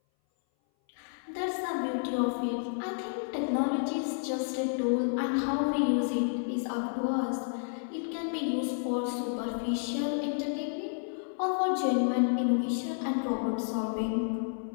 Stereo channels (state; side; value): silent; right; 57 dB below the other